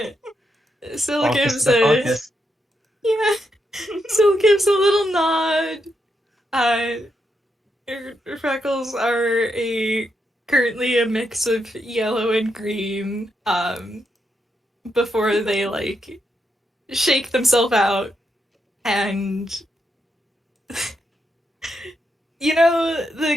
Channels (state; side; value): normal; both; correlation 0.82